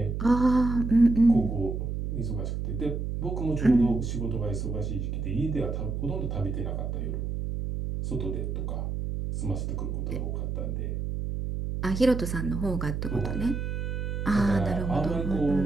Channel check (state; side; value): noise; right; hum, 3 dB below the sound